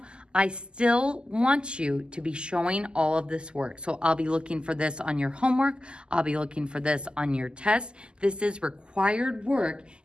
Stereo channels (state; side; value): late; left; 0.049 ms